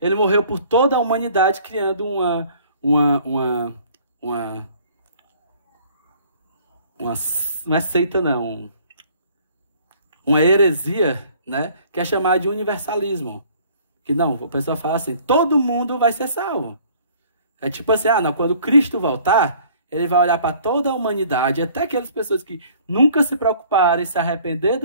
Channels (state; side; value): inverted; both; correlation -0.55